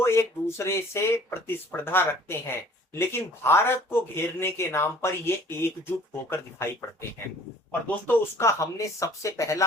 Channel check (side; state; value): both; normal; correlation 0.53